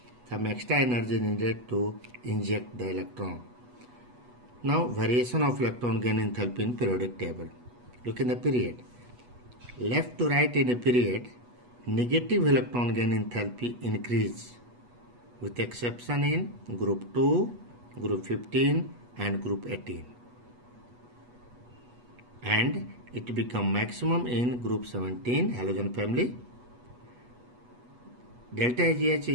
some extra energy is needed to inject the electron. Now variation of electron gain enthalpy in periodic table. Look in the period. Left to right in a period, negative electron gain enthalpy increase with exception in group 2, group 15 and group 18. And it become maximum in group 17 halogen family. Delta AgH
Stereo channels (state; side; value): late; left; 8.2 ms